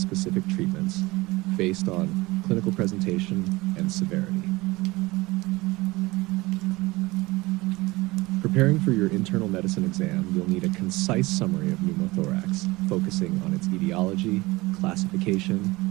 treatments, based on clinical presentation and severity. Preparing for your internal medicine exam, you'll need a concise summary of pneumothorax, focusing on its etiology, classification,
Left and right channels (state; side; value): quieter; left; 21.5 dB